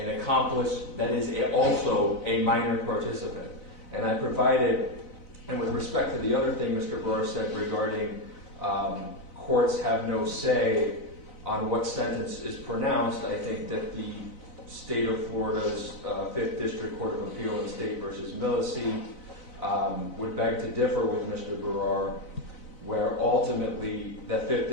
accomplice that is also a minor participant. And I provided, and with respect to the other thing Mr. Barr said regarding courts have no say on what sentence is pronounced, I think that the state of Florida's 5th District Court of Appeal in State versus Millisey would beg to differ with Mr. Barrar, where ultimately the 5th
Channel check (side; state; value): right; late; 4.0 ms